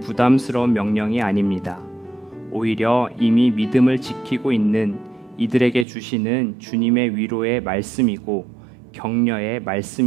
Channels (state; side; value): drops out; left; at 5.9 s